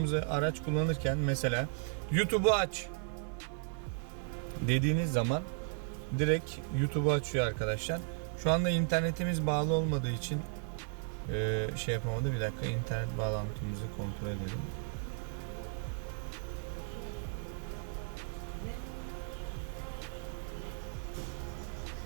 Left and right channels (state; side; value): silent; left; 54 dB below the other